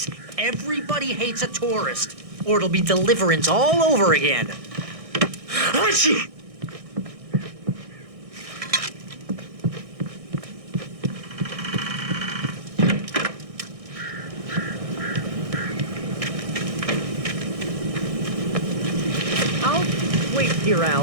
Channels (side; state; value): left; late; 1.6 ms